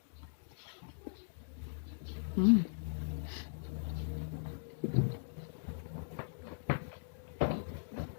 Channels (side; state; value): right; silent; digital silence